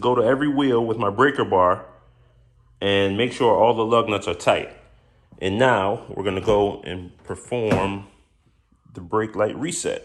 to every wheel with my breaker bar and make sure all the lug nuts are tight. And now we're gonna go and perform the brake light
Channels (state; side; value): identical; both; correlation 1.00